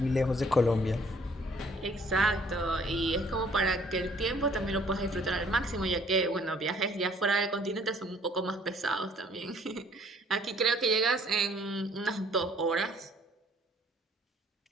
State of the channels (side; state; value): both; normal; correlation 0.59